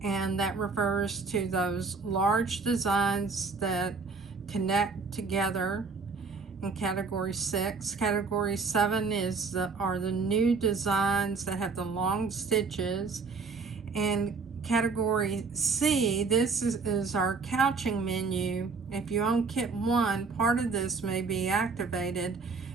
and that refers to those large designs that connect together in category 6. Category 7 are the new designs that have the long stitches. And category C, this is our couching menu. If you own Kit 1, part of this may be activated,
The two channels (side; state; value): left; quieter; 4.5 dB